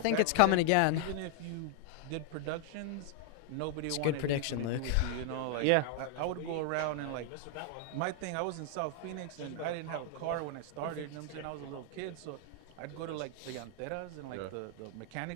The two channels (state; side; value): different; both; correlation 0.00